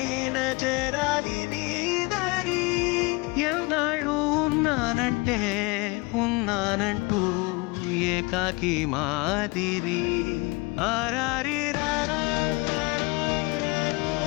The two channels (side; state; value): right; quieter; 26.7 dB